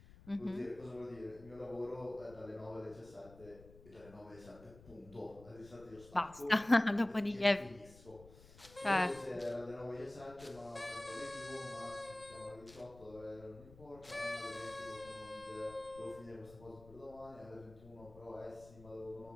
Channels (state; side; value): noise; left; rumble, 20 dB below the sound